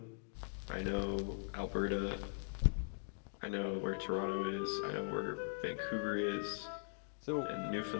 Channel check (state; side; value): silent; right; digital silence